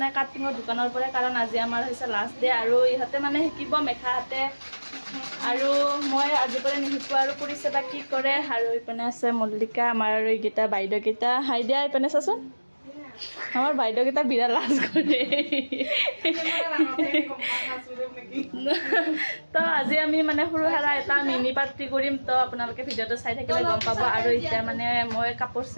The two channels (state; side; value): inverted; both; correlation -1.00